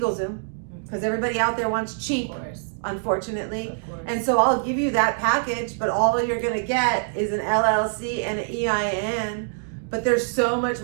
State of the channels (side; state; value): left; silent; digital silence